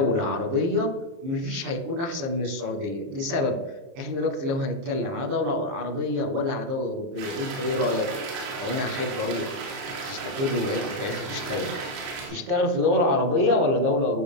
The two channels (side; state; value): left; late; 30 ms